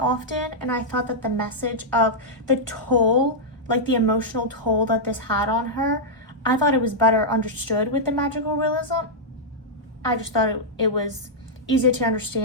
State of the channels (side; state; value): both; normal; correlation -0.07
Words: and I thought that the message of the toll, like the emotional toll that this had on her, I thought it was better understood with the magical realism. I just thought it was easier to